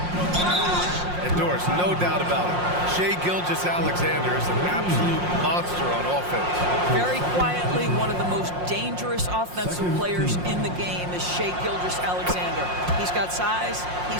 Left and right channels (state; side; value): late; left; 5.6 ms